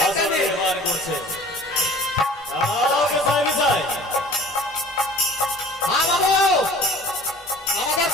নির্মাণ করছে। যাও বিছায় বিছায়। হ্যাঁ বাবু আমাদের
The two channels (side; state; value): both; normal; correlation 0.47